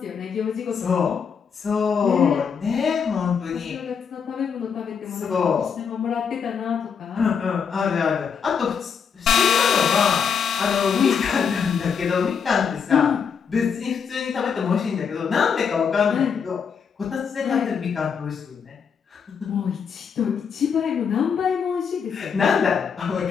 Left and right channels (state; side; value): quieter; right; 6.7 dB